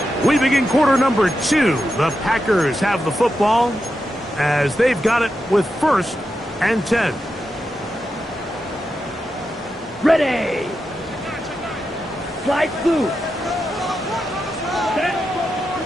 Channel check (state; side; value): normal; both; correlation 0.88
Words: We begin quarter number 2. The Packers have the football as they've got it with 1st and 10. Ready. Slide through.